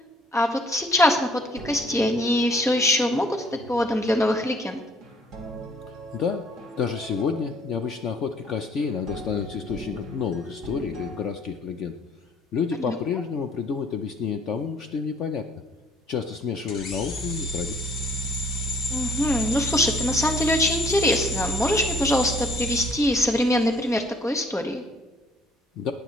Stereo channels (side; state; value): both; normal; correlation 0.60